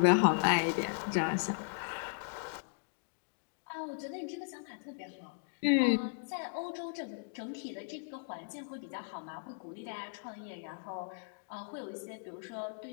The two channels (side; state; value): right; silent; digital silence